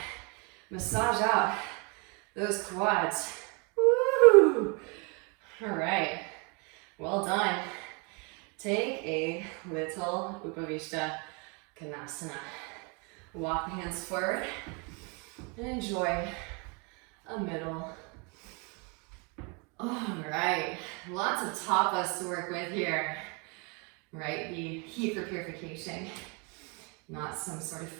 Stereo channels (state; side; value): quieter; left; 32.7 dB